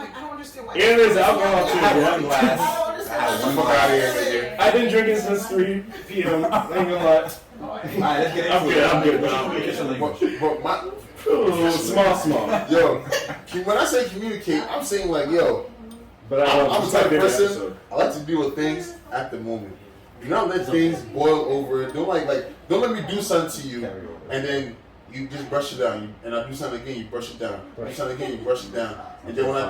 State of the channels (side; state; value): both; identical; correlation 1.00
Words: I don't understand why. And there's alcohol too. one glass. I've been drinking since 3 p.m. I ain't gonna lie. Alright, let's get into it. I'm good. But Small. Yo, when I say communicate, I'm saying like, yo. But I'm the type of person. I like to deal with things at the moment. Do not let things boil over. Don't let me do something to you, and then you just brush it down. And I do something again, you brush it down. Do something again, you brush it down. And then when I